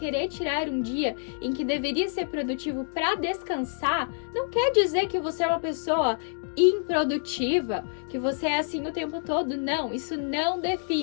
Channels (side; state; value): right; silent; digital silence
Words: tirar um dia em que deveria ser produtivo para descansar, não quer dizer que você é uma pessoa improdutiva, que você é assim o tempo todo. Não, isso não